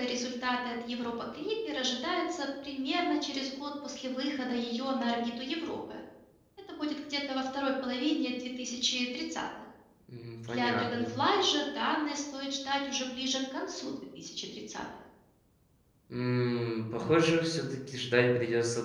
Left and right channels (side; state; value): both; identical; correlation 1.00